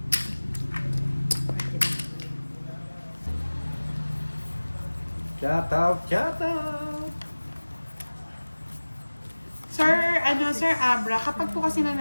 Shout out, shout out. Sir Abra, kapag po kasi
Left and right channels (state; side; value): inverted; both; correlation -1.00